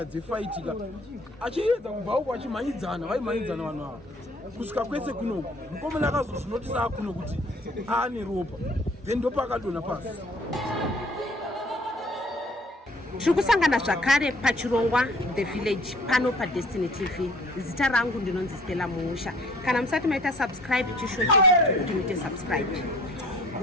dzefaitika achiedza kubva uko achimhanyidzana vaimhanyidzana vanhu ava kusvika kwese kunoku mukomana akazozvinotisa akuno kuti aane ropa then ndopa akadonha pasi. Tiri kusangana zvakare pachirongwa The Village pano paDestiny TV. Zita rangu ndinonzi Stella Muusha. Kana musati maita subscribe chishuwa chechi kuti muite subscribe.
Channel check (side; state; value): both; normal; correlation 0.54